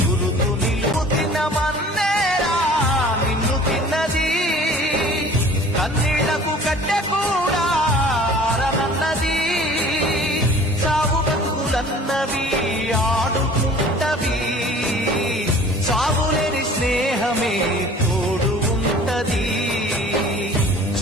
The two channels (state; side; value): normal; both; correlation 0.47